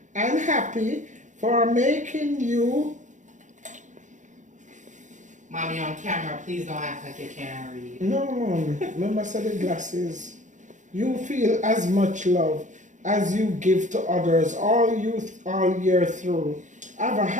and happy, for making you. Mommy on camera, please don't act like you can't read. No, Mom. Remember, I said the glasses. You feel as much love as you give to others all year through. Have a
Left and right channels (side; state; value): left; late; 0.36 ms